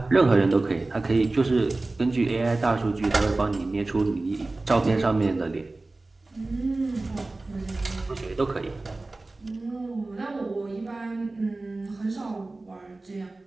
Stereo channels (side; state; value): left; quieter; 3.1 dB